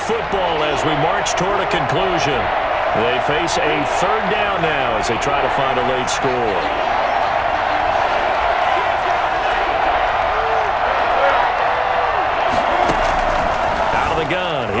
as we march toward a conclusion. They face a 3rd down now as they try to find a late score. Out of the gun,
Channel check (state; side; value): identical; both; correlation 1.00